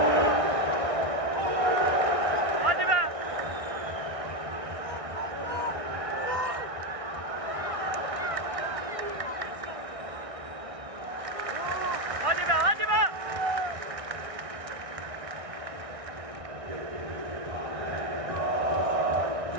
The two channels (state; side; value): late; left; 1.6 ms